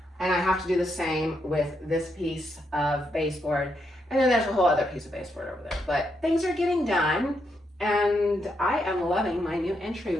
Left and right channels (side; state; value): both; normal; correlation 0.80